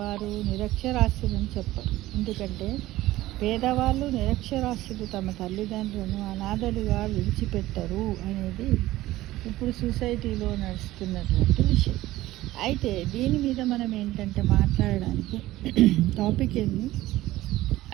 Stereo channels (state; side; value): quieter; left; 16.5 dB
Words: నిరక్షరాస్యులని చెప్పరు. ఎందుకంటే పేదవాళ్ళు, నిరక్షరాస్యులు తమ తల్లిదండ్రులను అనాథలుగా విడిచిపెట్టరు అనేది ఇప్పుడు సొసైటీలో నడుస్తున్నటువంటి విషయం. అయితే దీని మీద మనం ఏంటంటే మాట్లాడడానికి టాపిక్ ఏంది